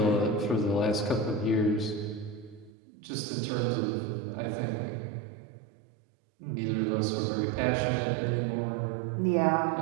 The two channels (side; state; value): left; drops out; at 2.7 s